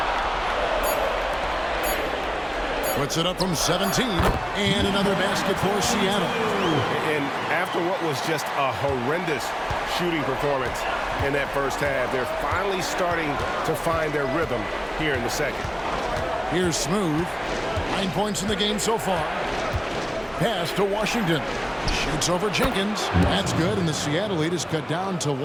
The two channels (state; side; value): identical; both; correlation 1.00